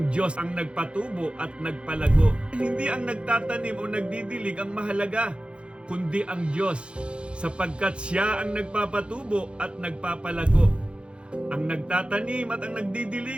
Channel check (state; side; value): late; left; 0.057 ms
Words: Diyos ang nagpatubo at nagpalago. Hindi ang nagtatanim o nagdidilig ang mahalaga, kundi ang Diyos, sapagkat siya ang nagpapatubo at nagpapalago. Ang nagtatanim at ang